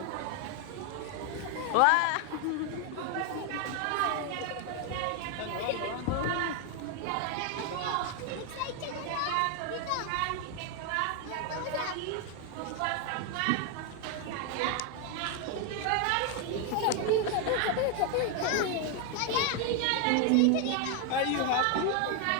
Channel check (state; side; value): different; both; correlation 0.01